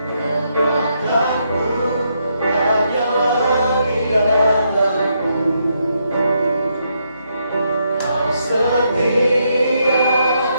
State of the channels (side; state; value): both; inverted; correlation -0.78